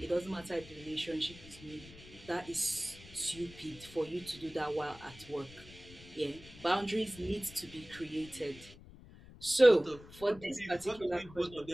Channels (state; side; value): noise; left; rumble, 19 dB below the sound